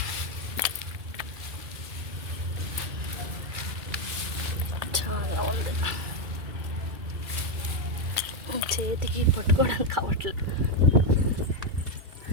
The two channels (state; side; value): late; left; 2.3 ms